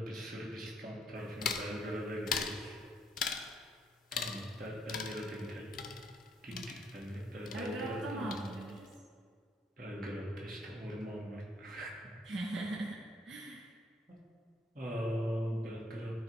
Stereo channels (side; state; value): both; normal; correlation 0.70